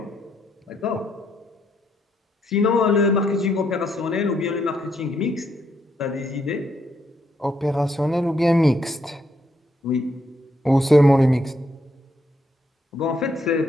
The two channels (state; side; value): normal; both; correlation 0.76